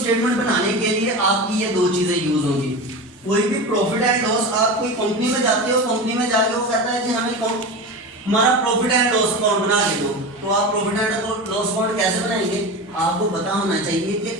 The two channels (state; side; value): normal; both; correlation 0.26